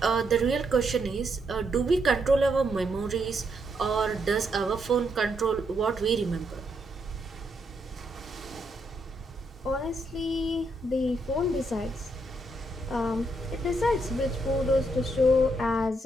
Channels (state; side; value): normal; both; correlation 0.77